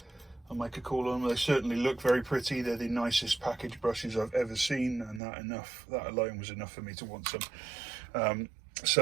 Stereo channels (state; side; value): drops out; left; at 5.2 s